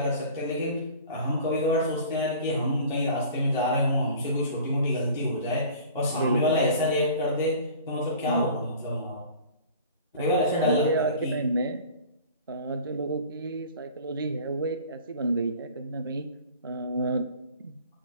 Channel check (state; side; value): inverted; both; correlation -0.43